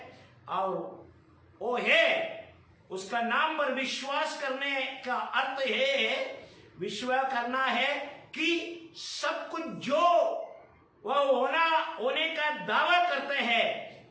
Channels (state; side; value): identical; both; correlation 1.00